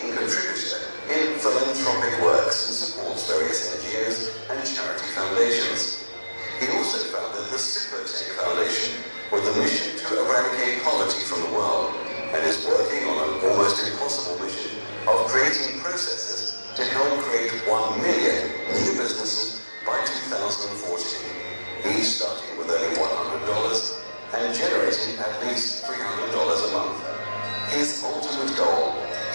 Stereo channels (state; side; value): inverted; both; correlation -1.00